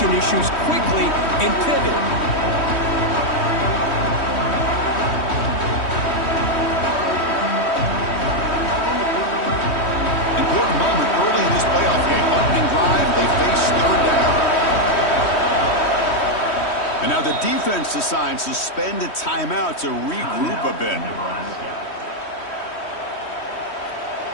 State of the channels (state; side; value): late; right; 3.1 ms